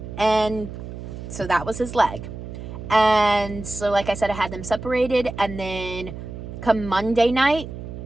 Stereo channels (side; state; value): right; noise; hum, 10 dB below the sound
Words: And so that was his leg. And so, like I said, I had them separated. And then come Monday night,